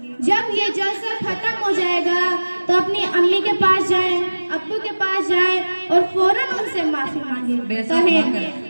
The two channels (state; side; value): inverted; both; correlation -1.00